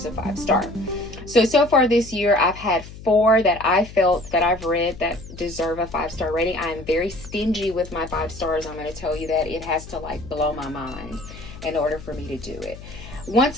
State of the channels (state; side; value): noise; left; hum, 15 dB below the sound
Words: a 5-star. So far this year, I've had 4 that I felt that I've read that deserve a 5-star rating. I am very stingy with my 5 stars. I'm going to tell you that. It has to like blow my mind in order for me to do it.